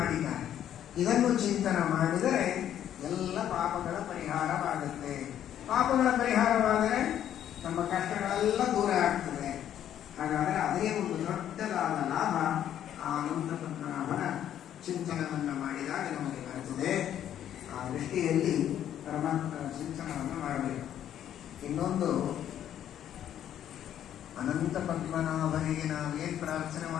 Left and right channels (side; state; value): right; quieter; 10.6 dB